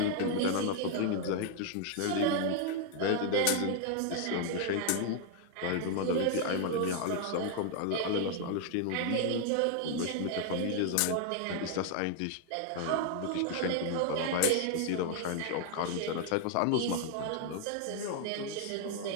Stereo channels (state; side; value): different; both; correlation 0.00